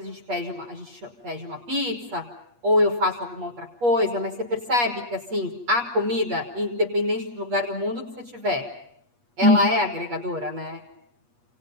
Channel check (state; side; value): late; left; 8.4 ms